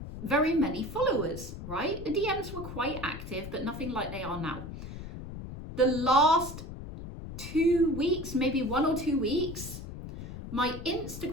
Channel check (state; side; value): noise; left; rumble, 10 dB below the sound